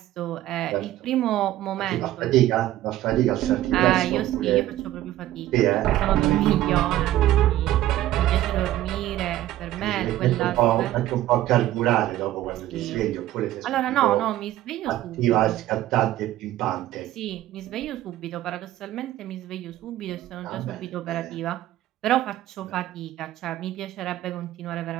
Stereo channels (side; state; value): left; quieter; 14.2 dB